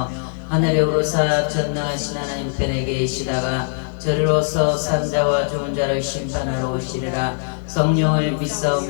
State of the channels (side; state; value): right; silent; digital silence